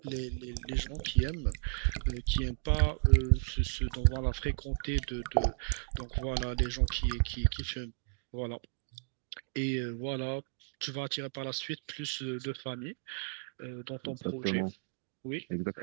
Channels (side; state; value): left; silent; digital silence